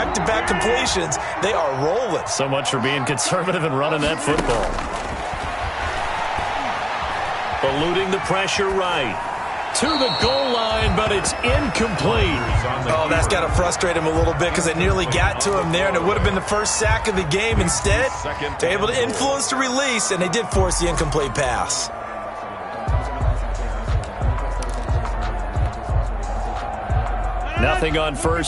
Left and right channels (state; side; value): identical; both; correlation 1.00